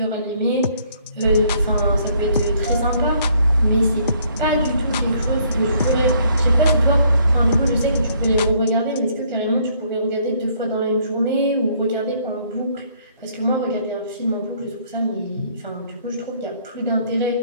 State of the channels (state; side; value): inverted; both; correlation -0.64